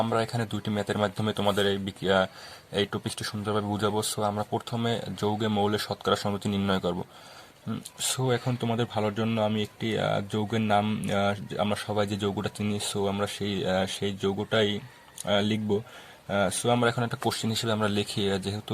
আমরা এখানে দুইটি ম্যাথের মাধ্যমে তোমাদের এই টপিকটি সুন্দরভাবে বুঝাবো। সো আমরা প্রথমে যৌগে মৌলের শতকরা সংযুতি নির্ণয় করব। সো এখন তোমাদের ভালোর জন্য আমি একটি যৌগের নাম, আমরা সবাই যে যৌগটা চিনি, সো আমরা সেই যৌগটাই লিখব। সো আমরা এখন একটা কোশ্চেন হিসেবে আমরা লিখি,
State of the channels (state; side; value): identical; both; correlation 1.00